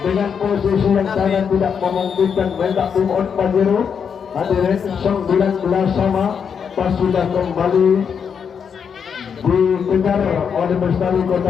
posisi yang sangat tidak memungkinkan mendak tim on Pajero hadirin 19 sama pas sudah kembali dikejar oleh Bestari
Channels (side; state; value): right; quieter; 6.9 dB